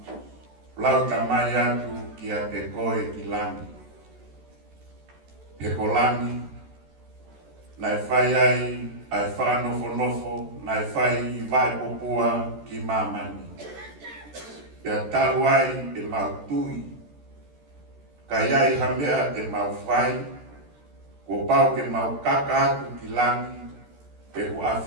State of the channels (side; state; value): left; late; 14 ms